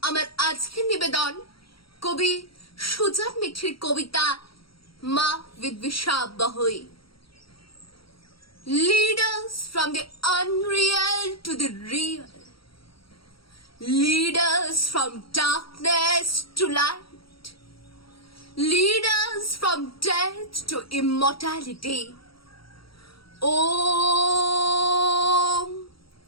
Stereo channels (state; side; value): late; right; 0.75 ms